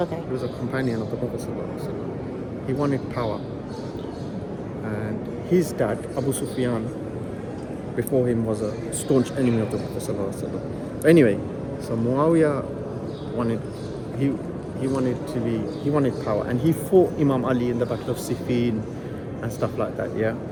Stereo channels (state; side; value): identical; both; correlation 1.00